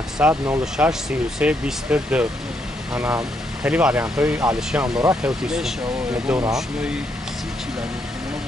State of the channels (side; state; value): both; normal; correlation 0.76